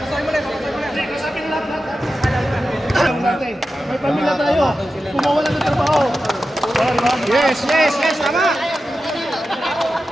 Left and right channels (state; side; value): normal; both; correlation 0.92